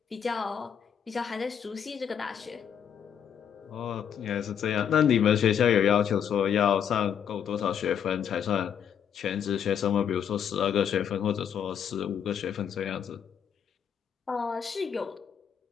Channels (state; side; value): quieter; right; 8.3 dB